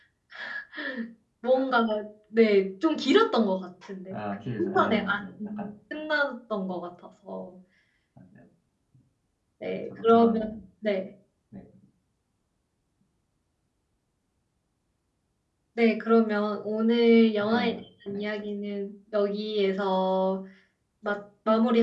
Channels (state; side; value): identical; both; correlation 1.00